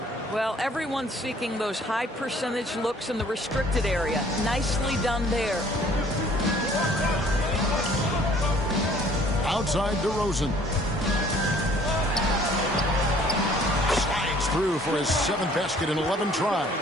Well, everyone's seeking those high percentage looks in the restricted area. Nicely done there. Outside DeRozan. Slides through for his 7th basket in 11 tries.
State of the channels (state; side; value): normal; both; correlation 0.56